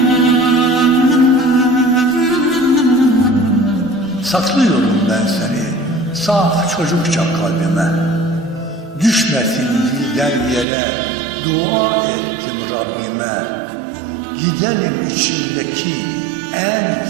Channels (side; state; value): left; drops out; at 10.7 s